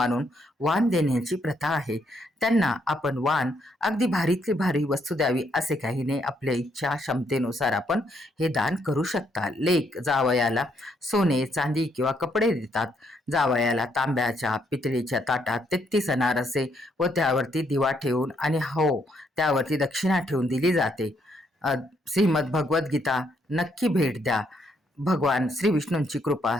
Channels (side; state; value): both; normal; correlation 0.73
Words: वाण देण्याची प्रथा आहे. त्यांना आपण वाण अगदी भारीतली भारी वस्तू द्यावी असे काही नाही. आपल्या इच्छा क्षमतेनुसार आपण हे दान करू शकता. लेक जावयाला सोने, चांदी किंवा कपडे देतात. जावयाला तांब्याच्या पितळीच्या ताटात 33 अनारसे व त्यावरती दिवा ठेवून आणि त्यावरती दक्षिणा ठेवून दिली जाते. श्रीमद भगवद्गीता नक्की भेट द्या. भगवान श्री विष्णूंची कृपा